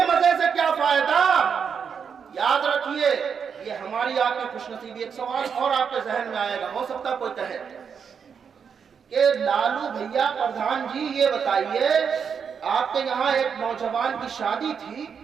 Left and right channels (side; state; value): left; quieter; 6.7 dB